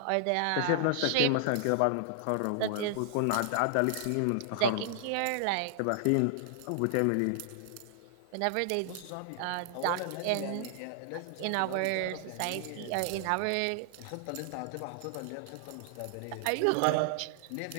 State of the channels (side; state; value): both; different; correlation -0.01